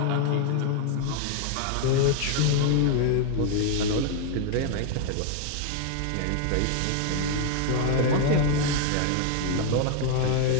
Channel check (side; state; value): both; different; correlation 0.00